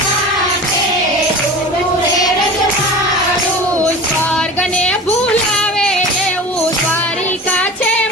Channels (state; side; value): normal; both; correlation 0.35